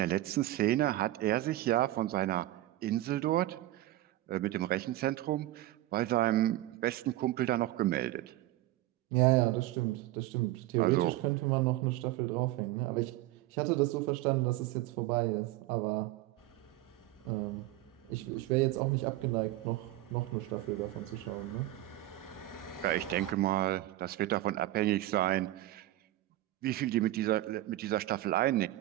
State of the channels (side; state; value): left; quieter; 15.9 dB